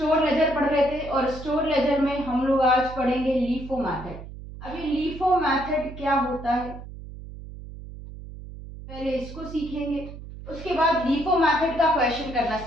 लेजर पढ़ रहे थे और स्टोर लेजर में हम लोग आज पढ़ेंगे लीफो मैथड। अभी लीफो मैथड क्या होता है पहले इसको सीखेंगे, उसके बाद लीफो मैथड का क्वेश्चन करना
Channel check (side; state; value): right; noise; hum, 13 dB below the sound